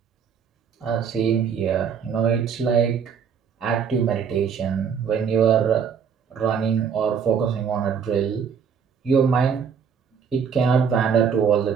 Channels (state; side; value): quieter; left; 6.9 dB